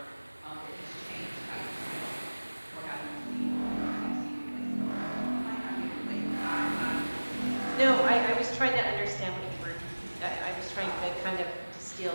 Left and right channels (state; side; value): inverted; both; correlation -1.00